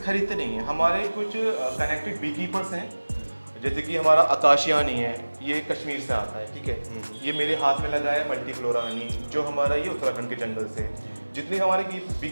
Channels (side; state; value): both; inverted; correlation -1.00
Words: खरीदते नहीं हैं। हमारे कुछ कनेक्टेड बी कीपर्स हैं, जैसे कि हमारा आकाशिया हनी है, ये कश्मीर से आता है, ठीक है। ये मेरे हाथ में लगा है मल्टीफ्लोरा हनी, जो हमारा ये उत्तराखंड के जंगल से। जितने हमारे बी